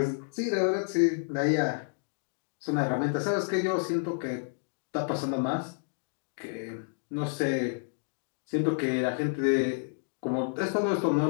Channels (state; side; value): silent; right; digital silence